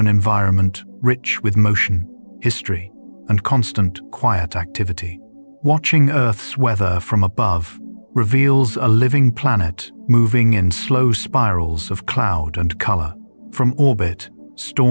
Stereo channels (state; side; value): inverted; both; correlation -1.00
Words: environment rich with motion, history, and constant, quiet activity. Watching Earth's weather from above reveals a living planet moving in slow spirals of cloud and color. From orbit,